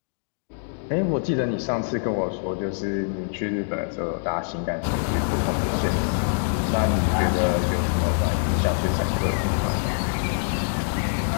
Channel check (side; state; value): right; silent; digital silence